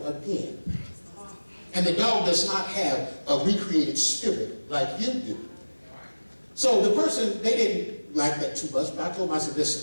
again. And the dog does not have a recreated spirit like you do. So the person, they didn't like that too much, but I told them, I said,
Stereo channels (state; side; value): inverted; both; correlation -1.00